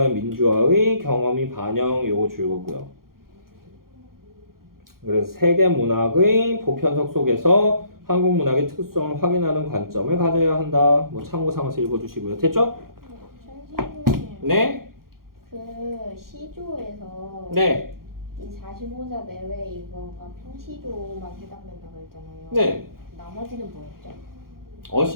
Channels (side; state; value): left; late; 0.92 ms